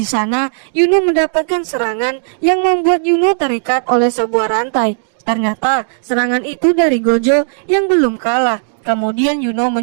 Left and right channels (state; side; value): silent; left; digital silence